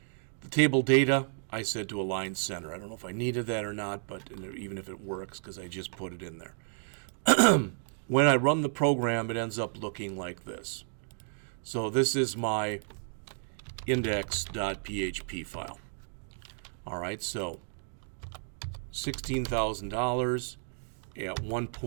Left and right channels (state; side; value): silent; left; digital silence